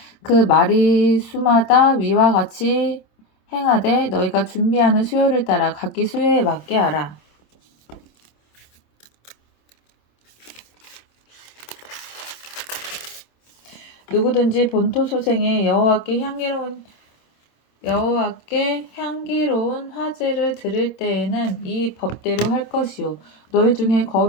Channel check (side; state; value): right; late; 26 ms